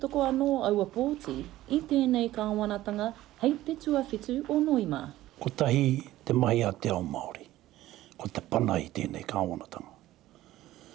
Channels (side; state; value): left; quieter; 15.4 dB